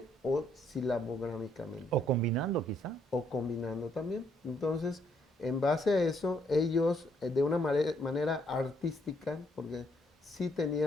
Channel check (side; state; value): both; normal; correlation 0.71